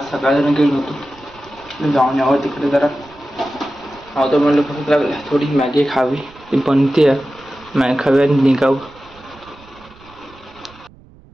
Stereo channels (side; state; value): right; noise; rumble, 25 dB below the sound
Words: सकाळी गेलो होतो. जाऊन यावं तिकडे जरा नव्हतं म्हणलं भूक लागली, थोडी मॅगी खावी. ती बनते मॅगी खावी आणि निघावं.